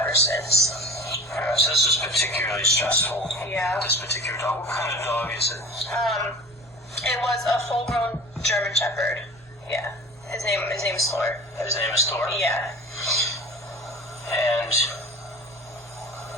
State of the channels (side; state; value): both; normal; correlation 0.40